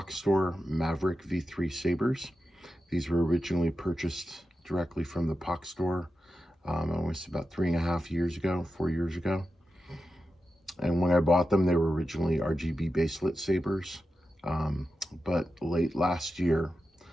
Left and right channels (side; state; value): both; normal; correlation 0.90